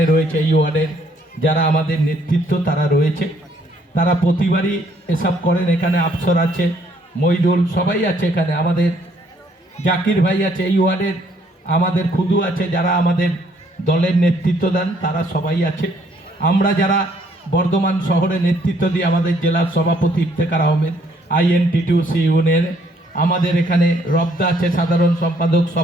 রয়েছে। এই ওয়ার্ডের যারা আমাদের নেতৃত্ব তারা রয়েছে, তারা প্রতিবারই এসব করেন। এখানে আফসর আছে, মইদুল, সবাই আছে এখানে, আমাদের জাকির ভাই আছে এই ওয়ার্ডের, আমাদের খুদু আছে, যারা আমাদের দলের নেতৃত্ব দেন তারা সবাই আছে। আমরা যারা বর্ধমান শহরে নেতৃত্ব দিই, আমাদের জেলার সভাপতি ইফতেখার আহমেদ, INTTUC ইউনিয়নের, আমাদের এখানে রবদা আছে, সাধারণ সম্পাদক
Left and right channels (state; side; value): normal; both; correlation 0.66